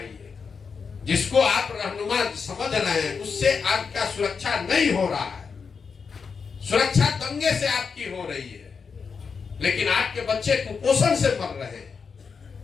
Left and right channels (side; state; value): right; quieter; 5.6 dB